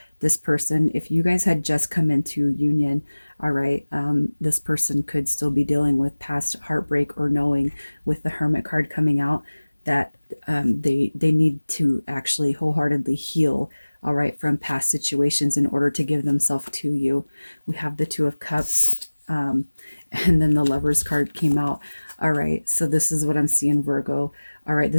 this person, if you guys had just come into union, all right, this person could still be dealing with past heartbreak, or knowing with the Hermit card coming out that they need to actually wholeheartedly heal, all right, from past situations in order to give themselves to you. We have the 2 of Cups, and then the Lovers card came out. All right, so this is what I'm seeing, Virgo. All right,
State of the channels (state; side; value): inverted; both; correlation -1.00